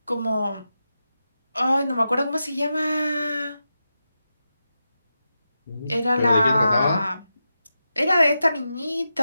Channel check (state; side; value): inverted; both; correlation -0.90